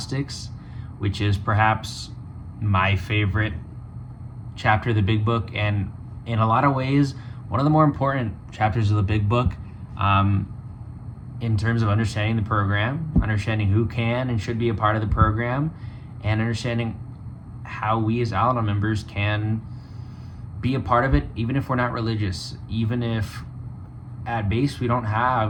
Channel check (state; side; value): identical; both; correlation 1.00